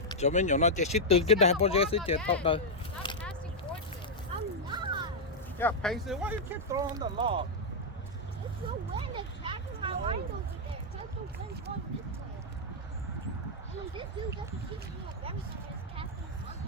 Cho mình nhỏ nó chạy xích từ cái đài bao giờ sẽ chạy tóc đời. Stop passing torches. I'm not. Yeah, Paisley, why you keep throwing the log? It's the wind attacking my line over there. Just the wind going this way. And this dude doesn't keep me up everything is casting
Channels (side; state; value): both; normal; correlation -0.04